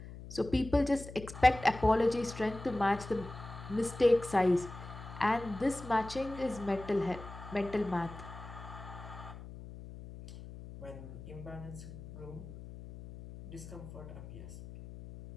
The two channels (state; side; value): noise; left; hum, 13 dB below the sound